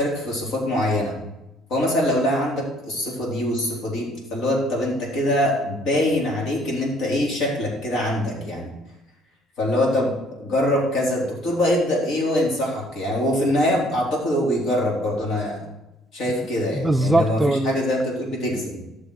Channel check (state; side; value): normal; both; correlation 0.62